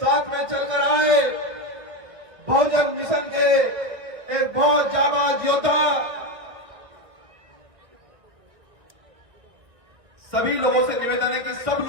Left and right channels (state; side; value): late; left; 1.6 ms